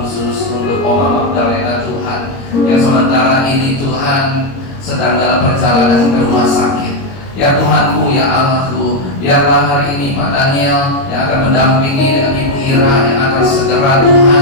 untuk Oma Magdalena Tuhan, yang sementara ini Tuhan sedang dalam perjalanan ke rumah sakit. Ya Tuhanku, ya Allahku, biarlah hari ini Pak Daniel yang akan mendampingi dengan Ibu Ira yang akan segera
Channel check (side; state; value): right; late; 22 ms